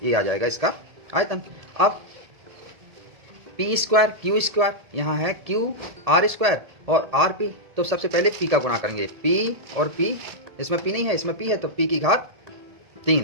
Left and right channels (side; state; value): left; late; 1.7 ms